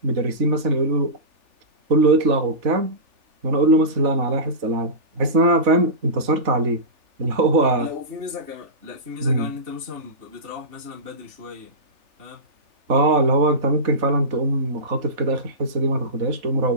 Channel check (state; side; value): late; left; 3.4 ms